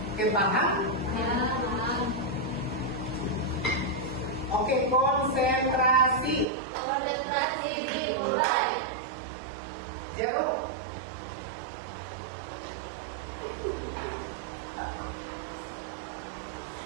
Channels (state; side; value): drops out; left; at 6.5 s